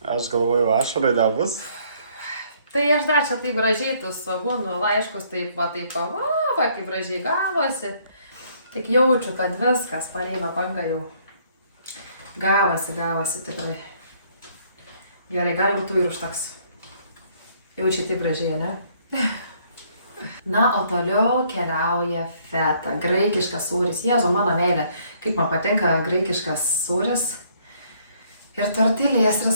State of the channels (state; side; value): inverted; both; correlation -0.65